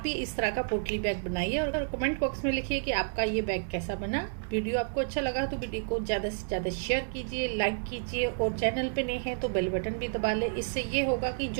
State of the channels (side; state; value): left; silent; 58 dB below the other